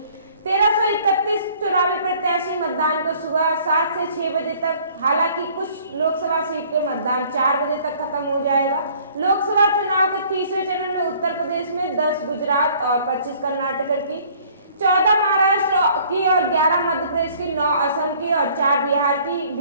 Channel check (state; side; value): inverted; both; correlation -0.56